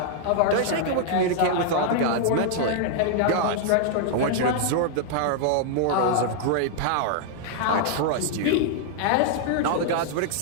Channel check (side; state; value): both; different; correlation -0.01